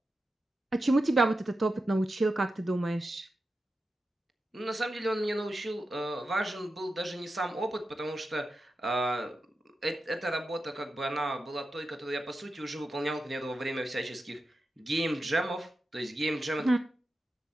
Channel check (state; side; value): normal; both; correlation 0.90